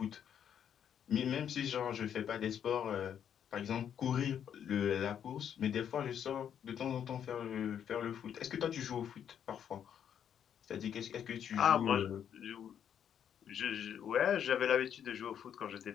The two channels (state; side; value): quieter; right; 8.9 dB